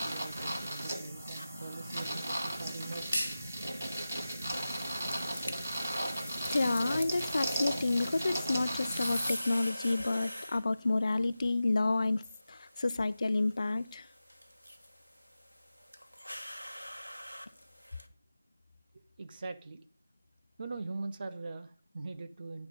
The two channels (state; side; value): inverted; both; correlation -0.94